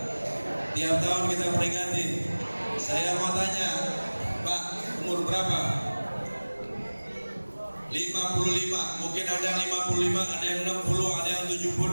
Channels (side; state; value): both; inverted; correlation -1.00